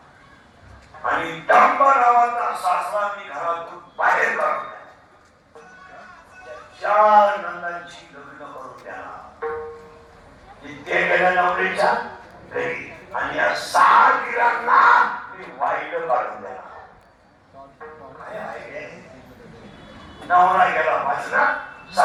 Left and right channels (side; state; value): both; identical; correlation 1.00